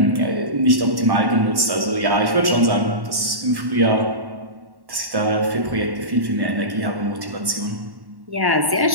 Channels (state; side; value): late; left; 1.1 ms